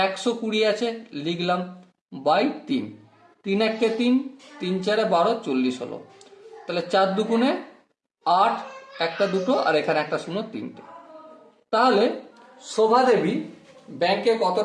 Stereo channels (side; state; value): both; identical; correlation 1.00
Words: 120 আছে লিখলাম বাই 3। 3 1 3, 3 4 12, 40 হলো। তাহলে 4 2 8, একটা দুটো আর এখানে একটা 0 3টে। তাহলে শোভা দেবী ব্যাংকে কত